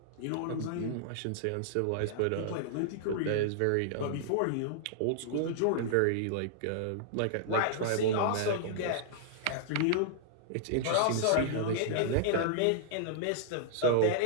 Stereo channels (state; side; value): different; both; correlation -0.01